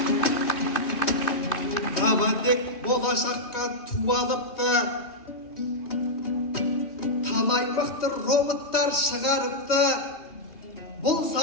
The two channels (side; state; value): right; late; 2.2 ms